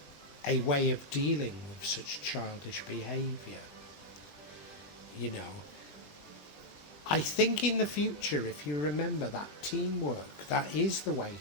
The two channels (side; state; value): right; late; 20 ms